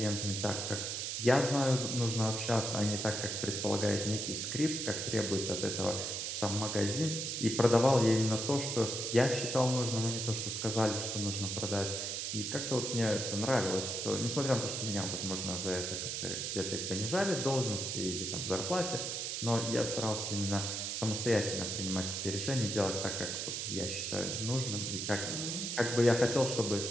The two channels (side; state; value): right; noise; hiss, 3 dB below the sound